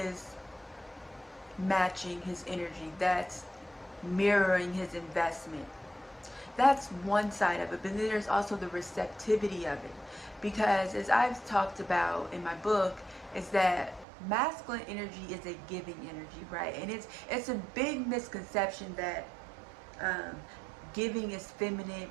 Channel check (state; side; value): drops out; left; at 14.1 s